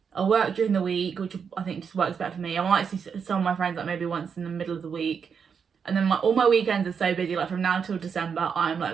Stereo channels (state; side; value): quieter; left; 6.6 dB